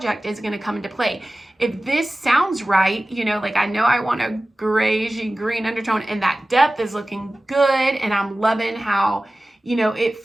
is going to come into play. If this sounds right, like I know I want a grayish green undertone and that depth is looking good and I'm loving how, it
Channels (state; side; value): normal; both; correlation 0.97